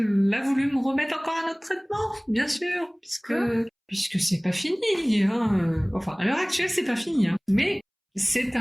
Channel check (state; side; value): identical; both; correlation 1.00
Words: a voulu me remettre encore un autre traitement, bien sûr, puisque c'est pas fini. Hein. Enfin, à l'heure actuelle, c'est pas fini. Hein. Mais c'est